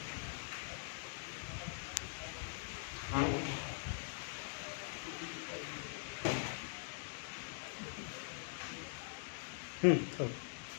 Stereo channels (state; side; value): silent; right; digital silence